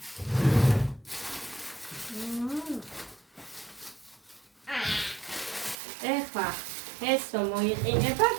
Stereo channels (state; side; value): drops out; left; at 5.8 s